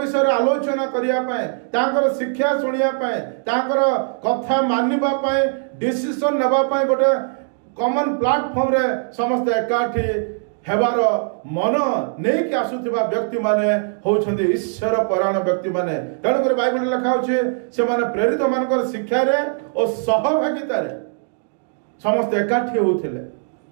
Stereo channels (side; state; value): left; silent; digital silence